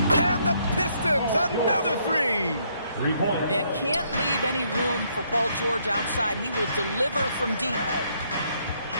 And the Pistons, another three. 3 points. And can't leave any room for Paul George outside. He will deliver from deep.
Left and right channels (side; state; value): both; inverted; correlation -0.71